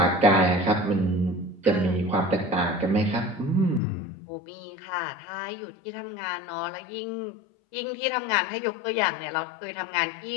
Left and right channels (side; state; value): right; drops out; at 3.8 s